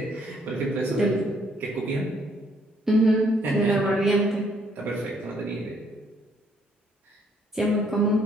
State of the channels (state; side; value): normal; both; correlation 0.67